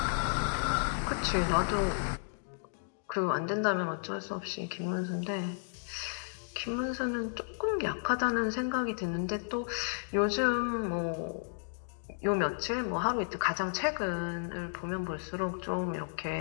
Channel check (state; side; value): silent; right; digital silence